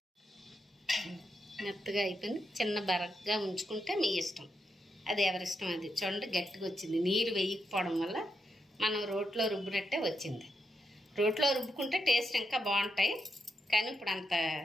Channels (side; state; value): both; normal; correlation 0.83